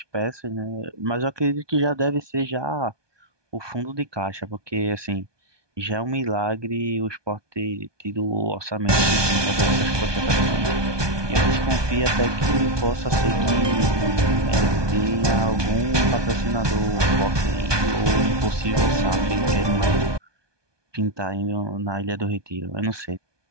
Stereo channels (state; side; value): late; left; 1.2 ms